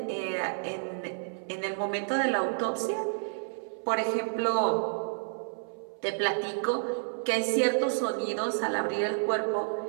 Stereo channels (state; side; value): silent; left; 58 dB below the other